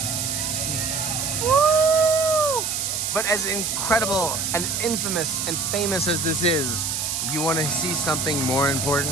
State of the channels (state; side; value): noise; right; hiss, 1 dB below the sound